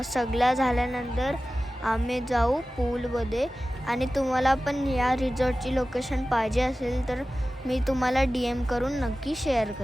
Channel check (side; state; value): both; normal; correlation 0.96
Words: सगळ्या झाल्यानंतर आम्ही जाऊ पूलमध्ये. आणि तुम्हाला पण या रिसॉर्टची लोकेशन पाहिजे असेल तर मी तुम्हाला DM करून नक्की शेअर